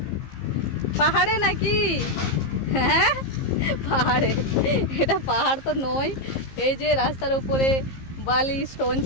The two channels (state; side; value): late; right; 15 ms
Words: পাহাড়ে নাকি? হ্যাঁ পাহাড়ে। এটা পাহাড় তো নয়, এই যে রাস্তার উপরে বালি স্টোন